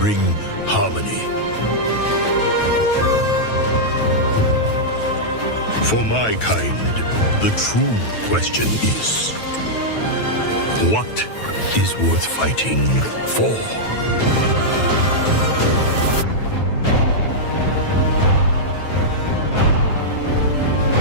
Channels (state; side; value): late; right; 9.3 ms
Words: harmony. For my kind, the true question is, what is worth fighting for?